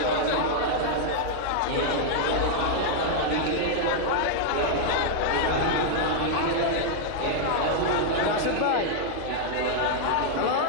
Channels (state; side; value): different; both; correlation -0.01